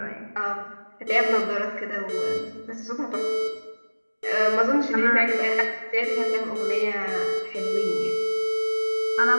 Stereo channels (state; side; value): inverted; both; correlation -1.00